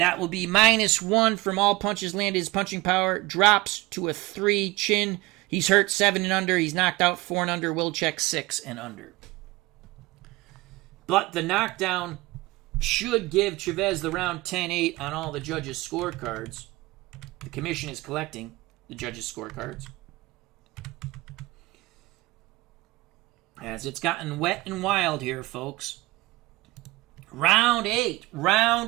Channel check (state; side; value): quieter; left; 20.8 dB